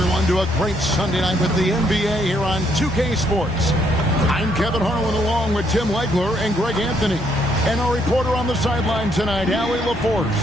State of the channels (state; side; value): normal; both; correlation 0.71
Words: to a great Sunday night with the NBA here on 2K Sports. I'm Kevin Harlan along with Tim Legler and Greg Anthony. And our reporter on the sideline tonight, Allie LaForce.